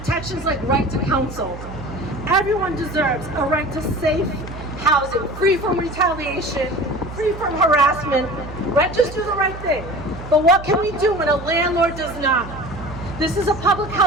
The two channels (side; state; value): right; noise; hum, 12 dB below the sound